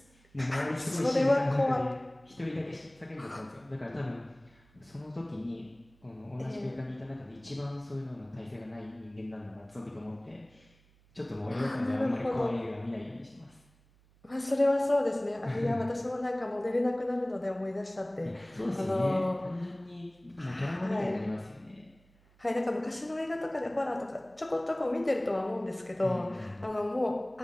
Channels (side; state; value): right; noise; hum, 30 dB below the sound